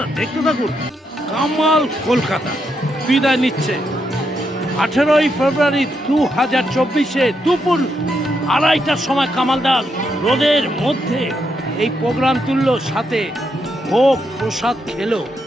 দেখতে থাকুন। কামাল কলকাতা বিদায় নিচ্ছে 18ই ফেব্রুয়ারি 2024-এ দুপুর 2:30টার সময়। কামালদার রোদের মধ্যে এই প্রোগ্রাম তুললো, সাথে ভোগ প্রসাদ খেলো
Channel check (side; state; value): both; normal; correlation 0.80